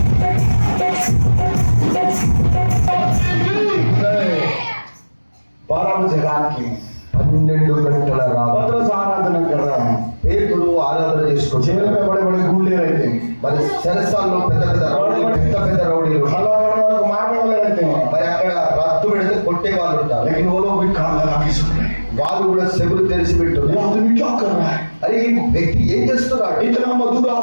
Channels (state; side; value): inverted; both; correlation -1.00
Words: జగానికి 12 గంటల पत्रस आराधना कर रहा है పేతురు ఆరాధన చేసుకుంటూ जेल में बड़े बड़े गुंडे रहते हैं మరి చెరసాల్లో పెద్ద పెద్ద రౌడీలు हलवा को मारने वाले रहते हैं మరి అక్కడ రత్తు పెడితే కొట్టే వాళ్ళు ఉంటారు. लेकिन वो लोग भी कान लगा के सुन रहे हैं వాళ్ళు కూడా చెవులు తెరిచి ये పెట్టున్నారు. आदमी क्या कर रहा है అరే ఈ వ్యక్తి ఏం చేస్తున్నాడు? इतना मधुर